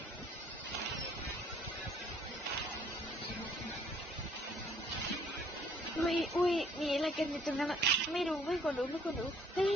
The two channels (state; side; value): normal; both; correlation 0.61